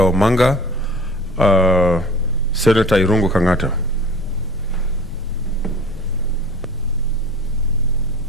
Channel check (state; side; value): noise; left; rumble, 15 dB below the sound